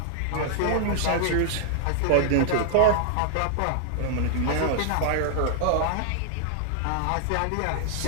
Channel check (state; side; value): different; both; correlation -0.01